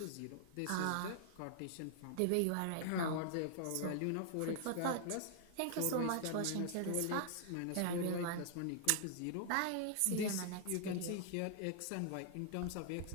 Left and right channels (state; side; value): different; both; correlation -0.01